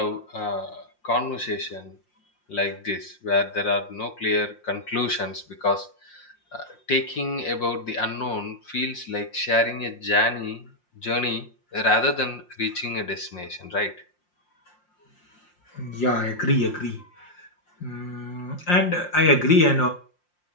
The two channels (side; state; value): right; late; 5.7 ms